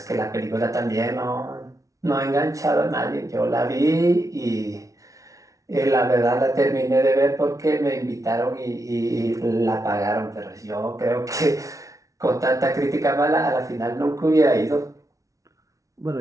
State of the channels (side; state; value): left; late; 0.16 ms